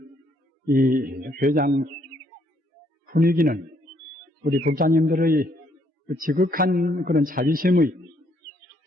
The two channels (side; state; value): both; normal; correlation 0.70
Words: 이 회장 분위기는 우리 독자님들의 지극한 그런